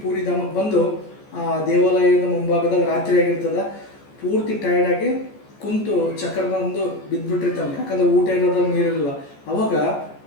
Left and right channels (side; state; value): right; late; 14 ms